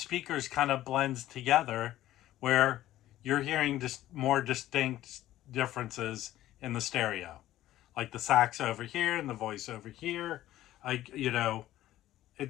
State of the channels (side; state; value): right; quieter; 14.2 dB